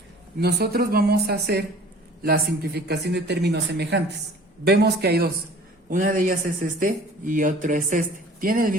nosotros vamos a hacer la simplificación de términos semejantes. Vemos que hay dos, una de ellas es este y otro es este. Tienen el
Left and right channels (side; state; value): both; normal; correlation 0.48